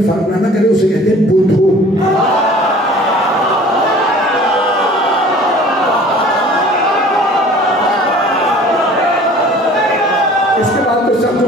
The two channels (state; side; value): normal; both; correlation 0.48